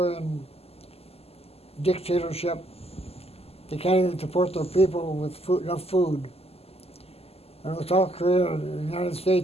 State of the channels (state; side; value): late; right; 0.29 ms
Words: dictatorship. They can't even support their people with enough food. I know South Korea and the United